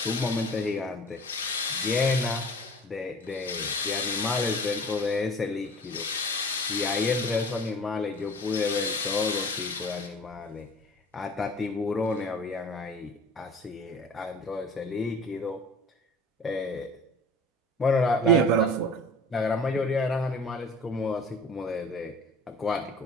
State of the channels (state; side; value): normal; both; correlation 0.43